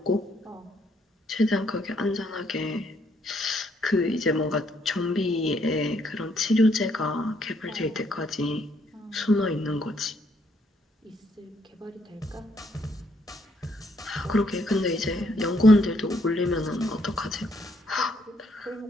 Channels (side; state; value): both; normal; correlation 0.71